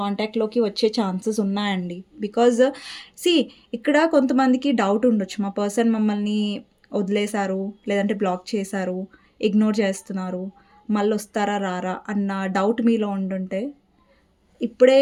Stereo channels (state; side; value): identical; both; correlation 1.00